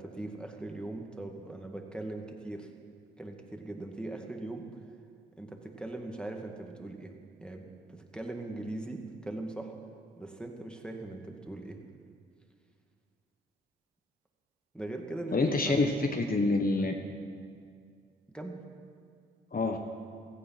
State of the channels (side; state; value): both; normal; correlation 0.67